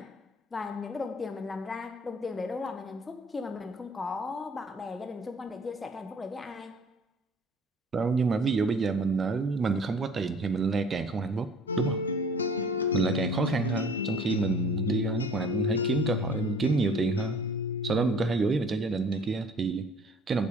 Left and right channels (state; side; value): normal; both; correlation 0.51